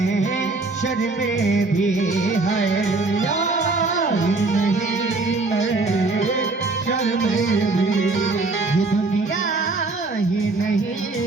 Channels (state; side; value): quieter; left; 3.4 dB